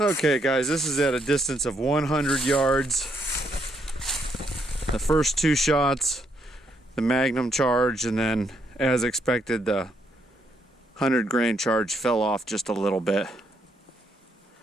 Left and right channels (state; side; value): normal; both; correlation 0.75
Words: guys, this is at a distance of 100 yards. The first 2 shots, the magnum charge, and then as expected the 100 grain charge fell off just a little bit.